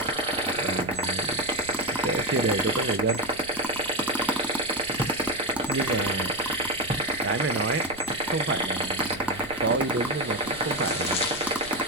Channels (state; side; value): noise; right; rumble, 18 dB below the sound